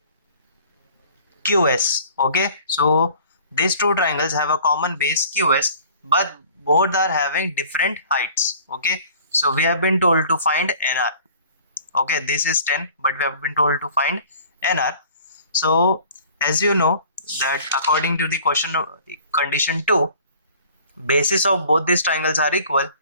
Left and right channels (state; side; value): inverted; both; correlation -0.50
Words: QS. Okay, so these two triangles have a common base QS, but both are having different heights. Okay, so we have been told to find NR. Okay, this is 10, but we have been told to find NR. So as you know that according to the condition 2, bases of both these triangles are equal,